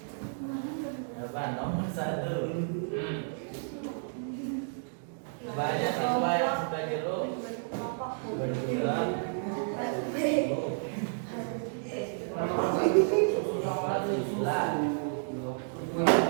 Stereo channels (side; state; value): left; silent; digital silence